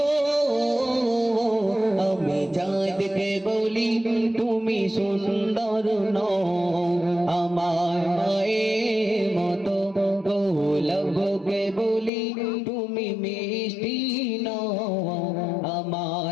আমি চাঁদকে বলি তুমি সুন্দর নও, আমার মায়ের মতো গোলাপকে বলি তুমি মিষ্টি নও,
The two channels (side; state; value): right; drops out; at 12.1 s